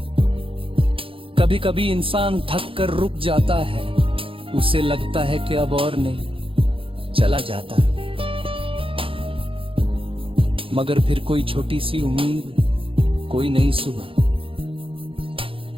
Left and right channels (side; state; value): left; late; 0.26 ms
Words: कभी कभी इंसान थक कर रुक जाता है, उसे लगता है कि अब और नहीं, चला जाता है। मगर फिर कोई छोटी सी उम्मीद, कोई नई सुबह